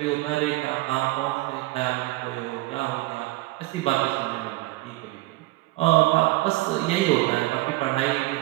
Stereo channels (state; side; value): quieter; left; 19.9 dB